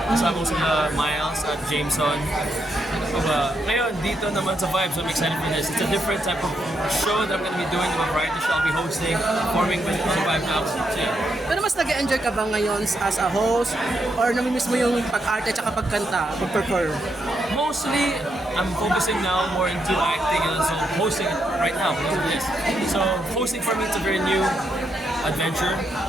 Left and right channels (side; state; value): both; normal; correlation 0.80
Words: Kasama ko sila Miles at Jameson. Ngayon, dito naman sa Vibes, I'm excited for this. It's a different type of show that I'm going to be doing. A variety show I'll be hosting, performing with the Vibe Now. So, yeah. Pero mas nag-enjoy ka ba ngayon as a host? Or namimiss mo yung pag-arte at pagkanta, pag-perform? Mostly, I'm focusing now more into acting and so hosting right now because of this. So hosting for me it's a very new adventure.